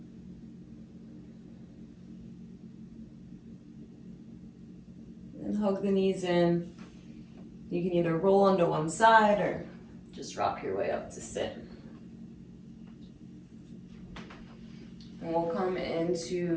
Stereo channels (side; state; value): both; identical; correlation 1.00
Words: And hug the knees in. You can either roll onto one side or just rock your way up to sit. And we'll come